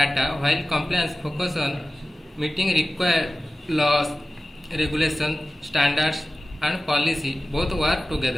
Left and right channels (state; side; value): normal; both; correlation 0.94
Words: while compliance focuses on meeting required laws, regulation, standards and policy. Both work